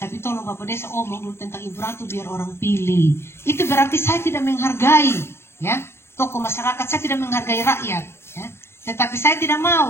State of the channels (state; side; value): late; right; 0.12 ms